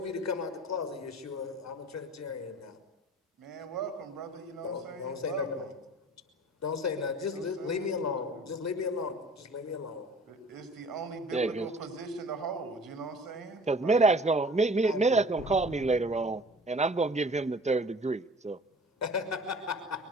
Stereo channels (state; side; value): normal; both; correlation 0.47